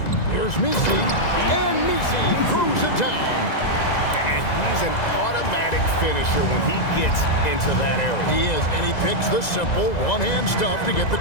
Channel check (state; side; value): late; right; 2.0 ms